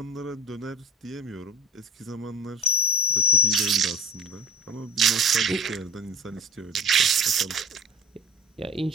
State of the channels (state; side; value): normal; both; correlation 0.37